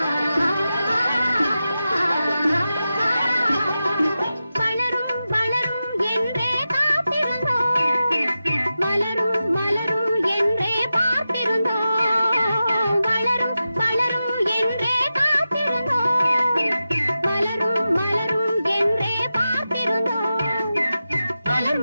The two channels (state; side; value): inverted; both; correlation -0.92